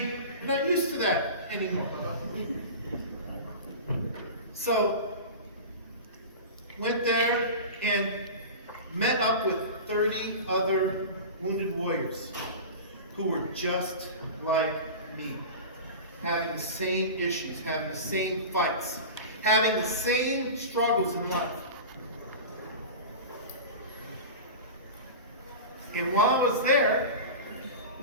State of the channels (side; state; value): both; inverted; correlation -0.31